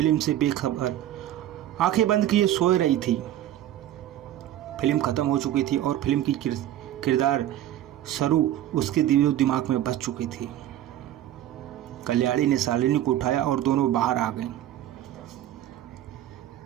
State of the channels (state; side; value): quieter; left; 12.5 dB